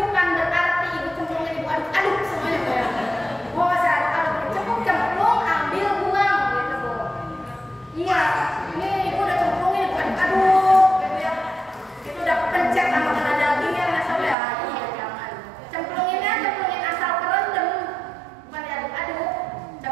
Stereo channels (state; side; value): drops out; left; at 14.4 s